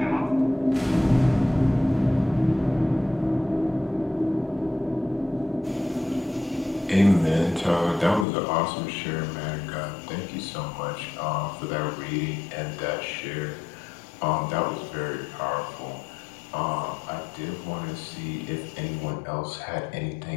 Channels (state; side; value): drops out; right; at 8.2 s